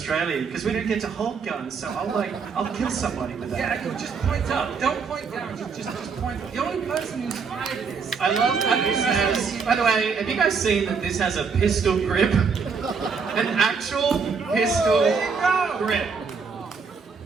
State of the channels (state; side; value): quieter; left; 5.5 dB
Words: because we don't get to hold guns, so I'll kill somebody with that. Yeah, you just point up. Don't point down. Just point. The only person who's fired this. I love that this has, by the way, have you guys seen that this has a pistol grip? An actual pistol grip.